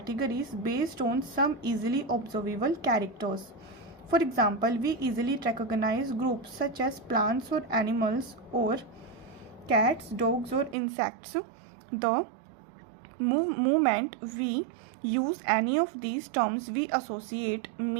based on some easily observable characters. For example, we easily recognize groups such as plants or animals, or cats, dogs, or insects. The moment we use any of these terms, we associate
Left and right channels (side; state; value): left; drops out; at 10.8 s